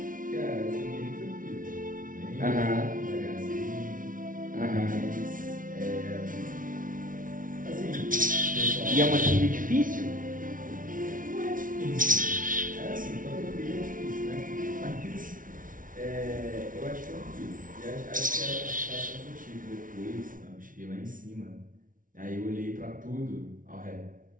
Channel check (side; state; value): left; late; 0.39 ms